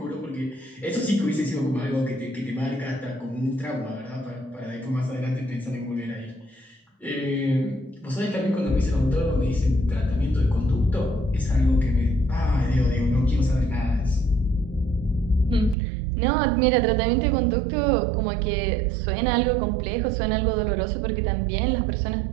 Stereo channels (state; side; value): drops out; left; at 15.8 s